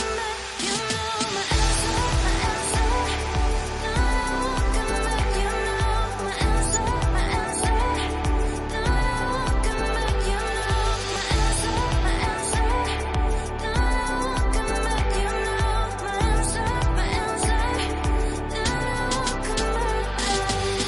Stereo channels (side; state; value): both; identical; correlation 1.00